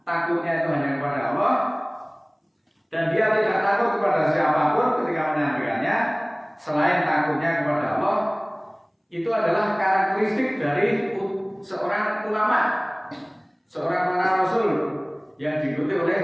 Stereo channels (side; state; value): both; identical; correlation 1.00